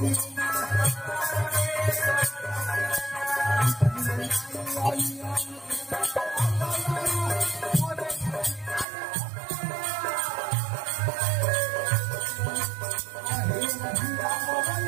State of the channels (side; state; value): left; drops out; at 8.8 s